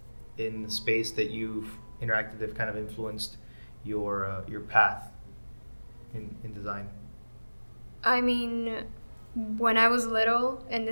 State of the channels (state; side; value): inverted; both; correlation -1.00